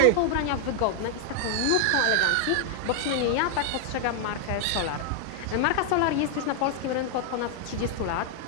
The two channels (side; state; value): both; different; correlation 0.00